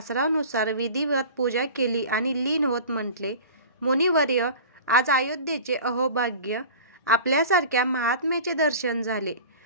विधिवत पूजा केली आणि लीन होत म्हटले, मुनिवर्य, आज अयोध्येचे अहोभाग्य. आपल्यासारख्या महात्म्याचे दर्शन झाले.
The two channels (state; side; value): inverted; both; correlation -0.38